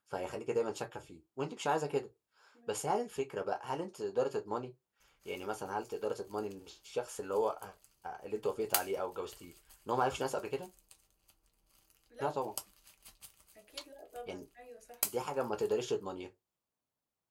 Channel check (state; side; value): identical; both; correlation 1.00